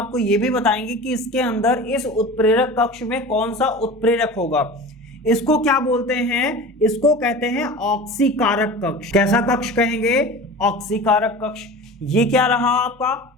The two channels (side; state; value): both; normal; correlation 0.35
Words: ये भी बताएंगे कि इसके अंदर इस उत्प्रेरक कक्ष में कौन सा उत्प्रेरक होगा। इसको क्या बोलते हैं, इसको कहते हैं ऑक्सीकारक कक्ष। कैसा कक्ष कहेंगे, ऑक्सीकारक कक्ष। ये क्या रहा आपका